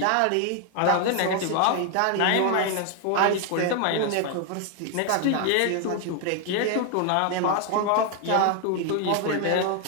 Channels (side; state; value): both; different; correlation 0.00